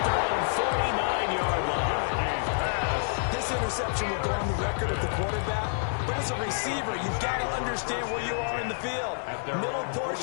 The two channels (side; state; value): right; silent; digital silence